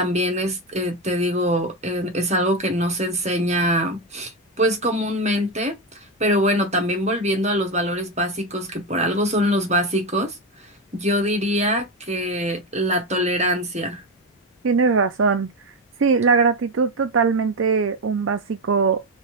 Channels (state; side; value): normal; both; correlation 0.12